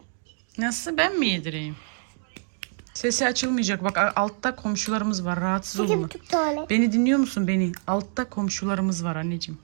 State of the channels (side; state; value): left; silent; 57 dB below the other